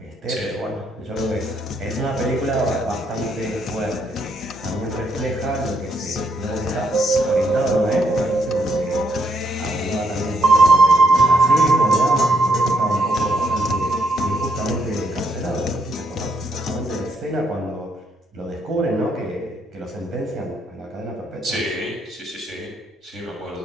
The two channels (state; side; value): normal; both; correlation 0.73